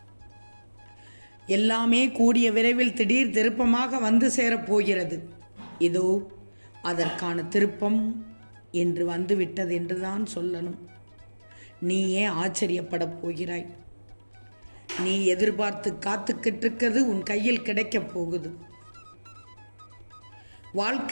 எல்லாமே கூடிய விரைவில் திடீர் திருப்பமாக வந்து சேரப்போகிறது. இதோ அதற்கான திருப்பம் என்று வந்துவிட்டது என்றுதான் சொல்லணும். நீ ஏன் ஆச்சரியப்படப் போகிறாய்? நீ எதிர்பார்த்து காத்துக்கிட்டிருக்கிறது உன் கையில் கிடைக்கப் போகுது.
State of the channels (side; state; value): both; inverted; correlation -1.00